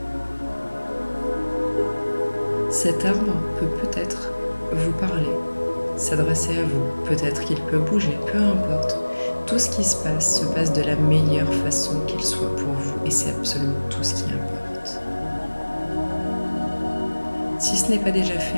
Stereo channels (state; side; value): inverted; both; correlation -1.00